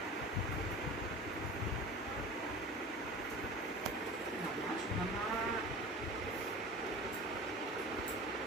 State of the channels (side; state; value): both; normal; correlation 0.36